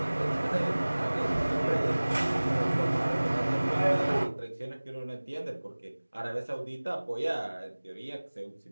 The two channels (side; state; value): both; inverted; correlation -1.00